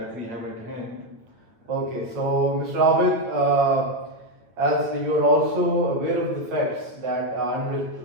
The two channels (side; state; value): left; late; 8.9 ms